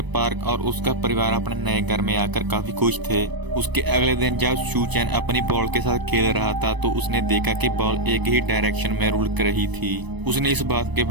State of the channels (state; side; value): late; left; 1.0 ms